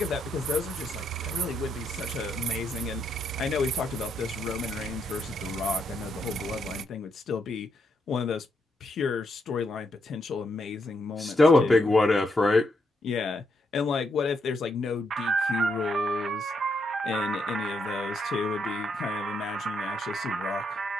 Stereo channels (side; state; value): both; normal; correlation 0.78